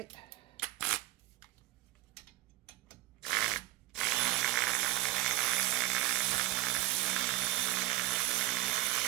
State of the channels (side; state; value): left; quieter; 16.7 dB